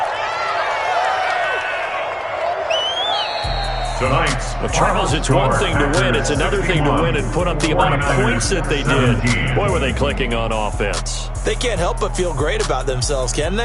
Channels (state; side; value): identical; both; correlation 1.00